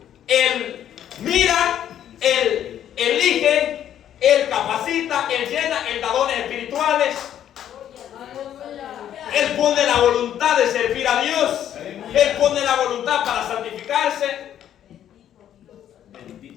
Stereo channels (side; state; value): right; quieter; 10.5 dB